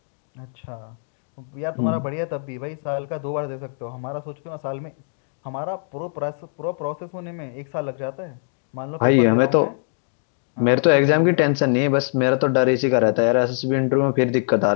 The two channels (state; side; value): silent; right; digital silence